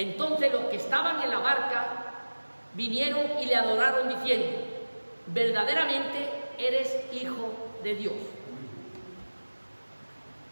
los que estaban en la barca vinieron y le adoraron diciendo: verdaderamente eres Hijo de Dios.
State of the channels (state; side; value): inverted; both; correlation -1.00